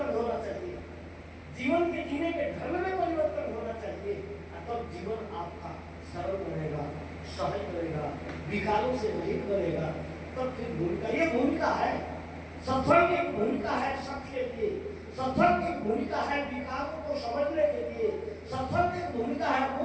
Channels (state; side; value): identical; both; correlation 1.00